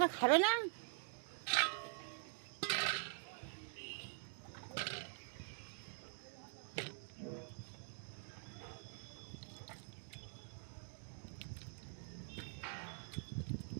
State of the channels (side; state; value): left; silent; digital silence